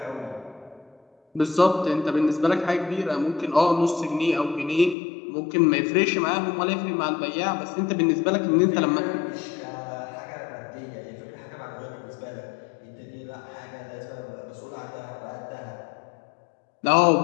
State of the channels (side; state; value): right; drops out; at 5.0 s